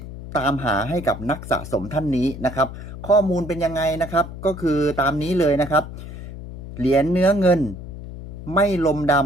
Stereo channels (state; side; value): noise; left; hum, 11 dB below the sound